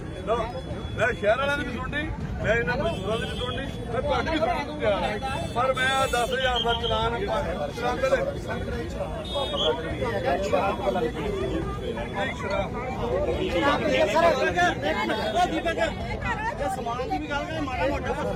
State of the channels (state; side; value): identical; both; correlation 1.00